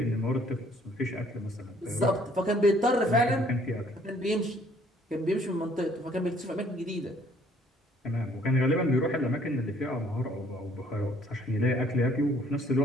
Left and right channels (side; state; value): both; normal; correlation 0.61